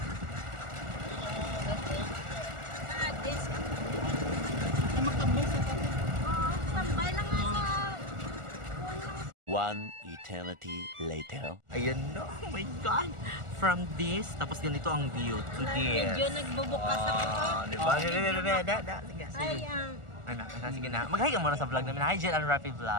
One eternity later. Ayan na, oh my God! From this, tapos ganito ang view to this. Medyo nagbubukas ako. Diba? Sige. Ay, Sige na. Mag-hi ka muna sa vlog namin. Hi, Jel and Rafi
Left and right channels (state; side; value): late; left; 1.4 ms